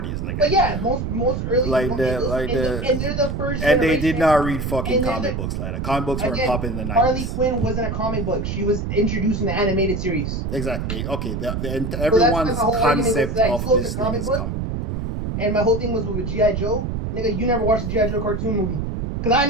nigga. But yeah, most early. And they're the first. And they did not read fucking comic books like that. Comic books weren't popping in the 90s. Harley Quinn wasn't a comic book. She was introduced in the animated series. Exactly. Okay. Everyone's concept of this thing is comic. And my whole thing was with G.I. Joe. Nigga, you never watched a G.I. Joe cartoon movie. Because I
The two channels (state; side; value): noise; right; rumble, 3 dB below the sound